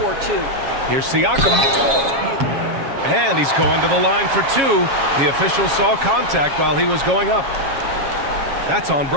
or two. Here's Siakam. And he's going to the line for 2. The official saw contact while he was going up. That's on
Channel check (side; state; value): left; late; 7.3 ms